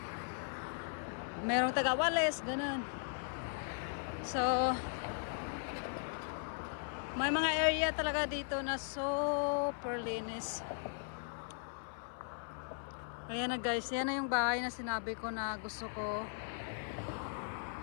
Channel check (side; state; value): right; silent; 52 dB below the other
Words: Merong taga-wales, ganun. So may mga area talaga dito na super linis. Ayan na guys, yan na yung bahay na sinabi ko na gusto ko